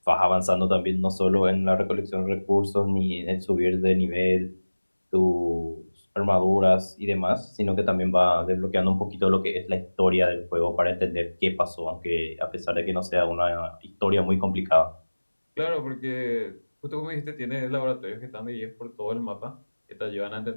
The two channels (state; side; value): inverted; both; correlation -1.00